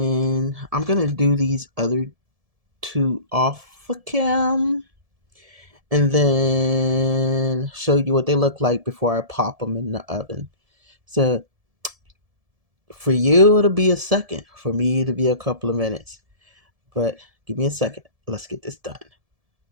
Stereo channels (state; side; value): late; left; 1.7 ms